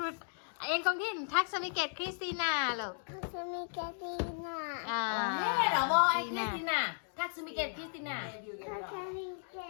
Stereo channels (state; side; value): silent; right; digital silence